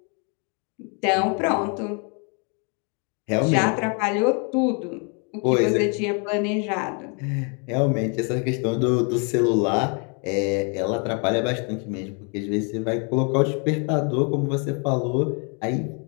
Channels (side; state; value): right; quieter; 36.9 dB